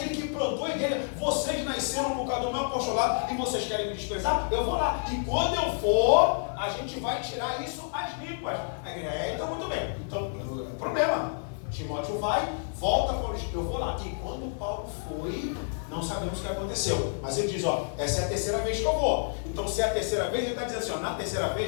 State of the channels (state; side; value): silent; right; digital silence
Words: que plantou a igreja. Vocês nasceram por causa do meu apostolado e vocês querem me desprezar? Eu vou lá. E quando eu for, a gente vai tirar isso às limpas. A igreja, então muito bem. Então, problema. Timóteo vai, volta para onde eu vou lá. E quando Paulo foi, não sabemos o que aconteceu. Mas ele diz, essa é a terceira vez que eu vou. Então, se é a terceira vez, ele está dizendo assim, na terceira